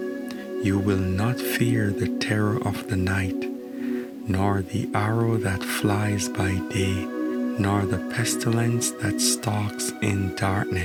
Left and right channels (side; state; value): both; identical; correlation 1.00